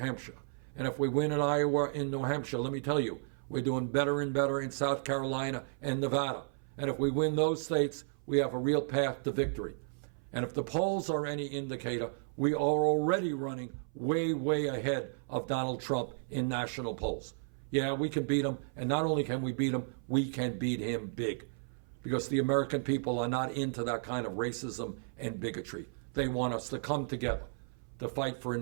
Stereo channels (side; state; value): left; silent; 55 dB below the other